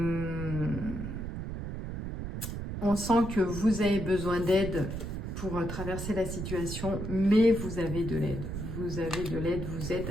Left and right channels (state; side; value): noise; right; rumble, 6 dB below the sound